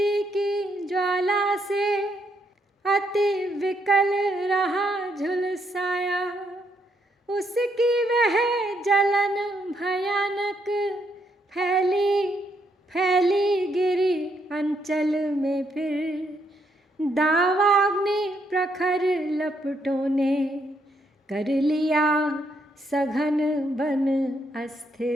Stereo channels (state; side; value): normal; both; correlation 0.75